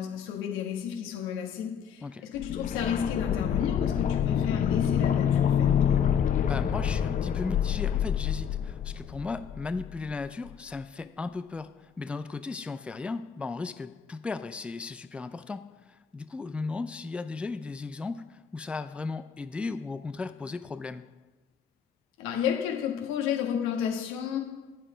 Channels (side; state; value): right; quieter; 7.5 dB